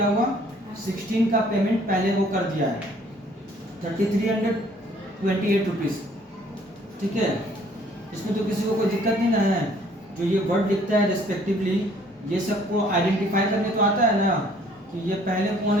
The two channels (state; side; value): normal; both; correlation 0.59